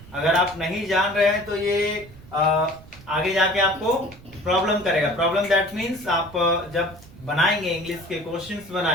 अगर आप नहीं जान रहे हैं तो ये आगे जाके आपको प्रॉब्लम करेगा। प्रॉब्लम दैट मीन्स आप जब बनाएंगे इंग्लिश के क्वेश्चंस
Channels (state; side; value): noise; right; rumble, 20 dB below the sound